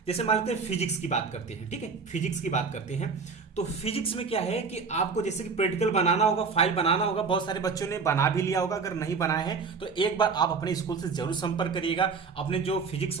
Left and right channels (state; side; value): quieter; left; 5.0 dB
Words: जैसे मान लेते हैं फिजिक्स की बात करते हैं। ठीक है, फिजिक्स की बात करते हैं तो फिजिक्स में क्या है कि आपको जैसे कि प्रैक्टिकल बनाना होगा, फाइल बनाना होगा। बहुत सारे बच्चों ने बना भी लिया होगा, अगर नहीं बनाया है तो एक बार आप अपने स्कूल से जरूर संपर्क करिएगा। अपने जो फिजिक्स